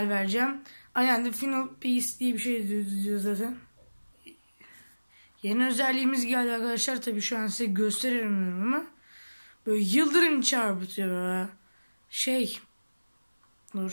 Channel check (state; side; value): inverted; both; correlation -1.00